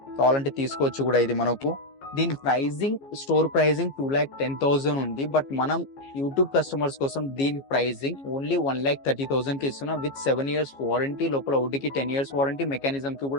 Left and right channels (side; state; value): right; late; 15 ms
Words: కావాలంటే తీసుకోవచ్చు కూడా. ఇది మనకు దీని ప్రైజింగ్ స్టోర్ ప్రైజింగ్ 2,10,000 ఉంది, బట్ మనం యూట్యూబ్ కస్టమర్స్ కోసం దీని ప్రైజింగ్ ఓన్లీ 1,30,000 కి ఇస్తున్నాం విత్ 7 years వారంటీ. లోపల వుడ్కి 10 years వారంటీ, మెకానిజం కి